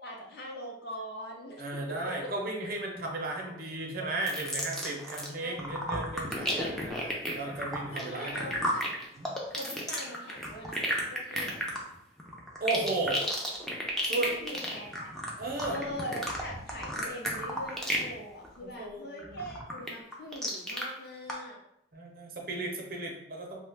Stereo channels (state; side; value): normal; both; correlation 0.16